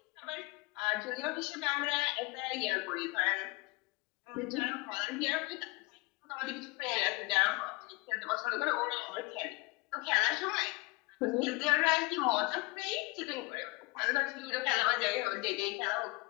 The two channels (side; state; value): right; quieter; 24.7 dB